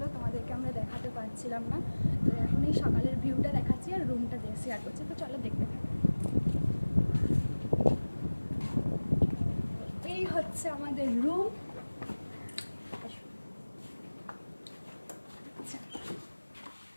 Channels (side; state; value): both; inverted; correlation -1.00